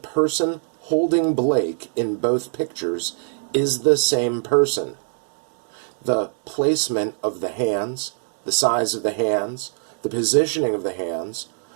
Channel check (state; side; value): silent; left; 60 dB below the other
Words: holding Blake in both pictures is the same person. The placement of the hands, the size of the hands, the positioning of the hands,